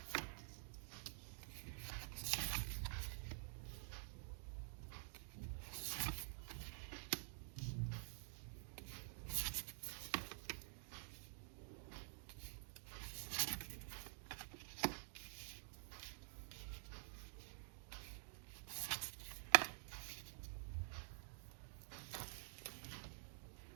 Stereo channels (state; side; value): silent; left; digital silence